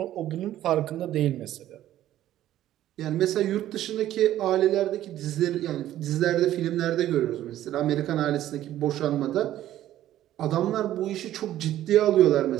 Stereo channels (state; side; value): quieter; left; 13.0 dB